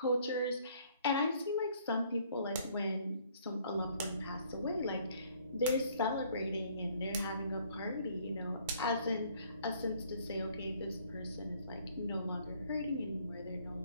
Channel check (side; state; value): both; inverted; correlation -0.61